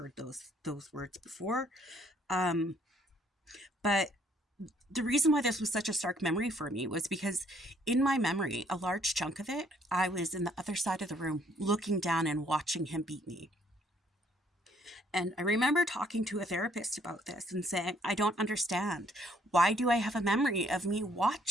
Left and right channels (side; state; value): both; normal; correlation 0.65